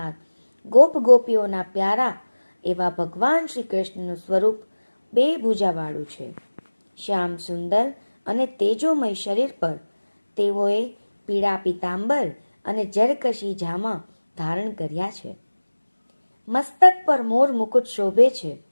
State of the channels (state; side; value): inverted; both; correlation -1.00